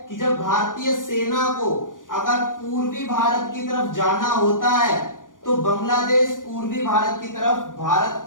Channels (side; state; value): right; late; 0.89 ms